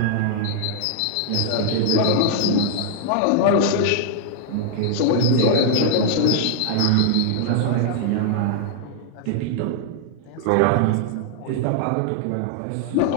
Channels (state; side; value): different; both; correlation -0.01